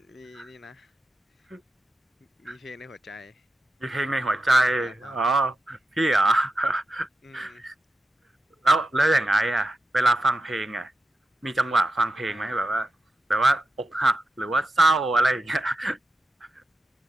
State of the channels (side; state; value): both; normal; correlation 0.89